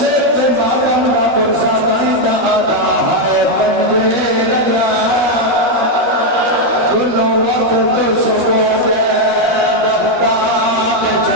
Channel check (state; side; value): late; left; 13 ms